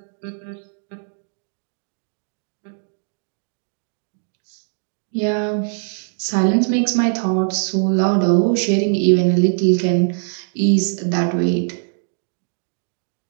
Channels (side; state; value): left; silent; digital silence